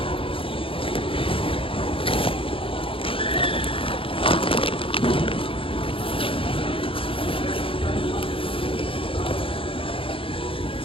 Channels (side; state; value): right; late; 0.26 ms